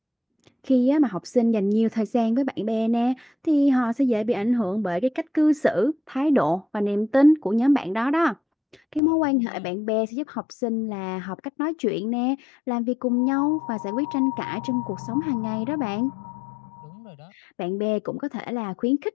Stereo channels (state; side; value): drops out; right; at 9.0 s